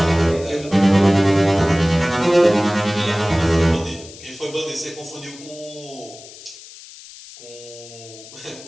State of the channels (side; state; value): left; noise; hiss, 18 dB below the sound